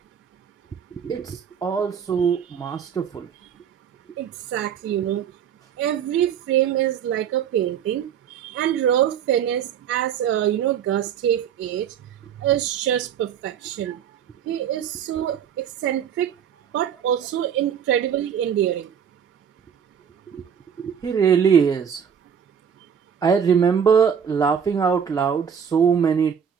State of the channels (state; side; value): quieter; left; 8.1 dB